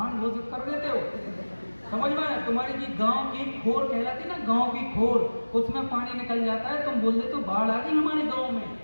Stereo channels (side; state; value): both; inverted; correlation -1.00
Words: घोषित कर देते हो। समझ में आया? तुम्हारी जी गांव की खोर कहलाती ना, गांव की खोर, उसमें पानी निकल जाता है, तुम बोल देते हो बाढ़ आ गई हमारे गांव में।